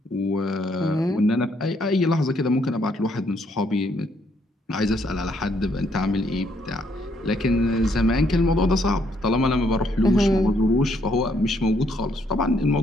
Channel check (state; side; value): normal; both; correlation 0.71